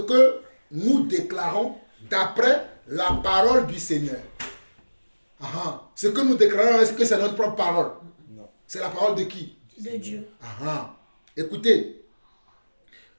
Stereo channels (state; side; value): inverted; both; correlation -1.00